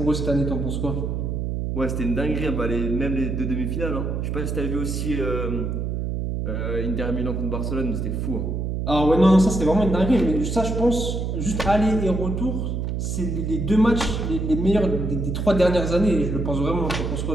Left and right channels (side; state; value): right; noise; hum, 2 dB below the sound